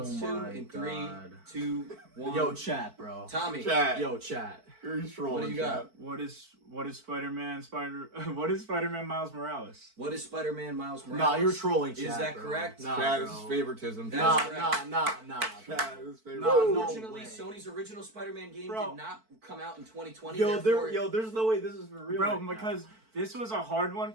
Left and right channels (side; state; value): left; late; 4.5 ms